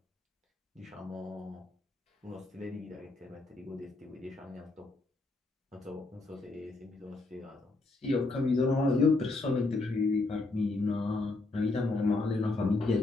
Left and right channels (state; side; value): quieter; right; 3.2 dB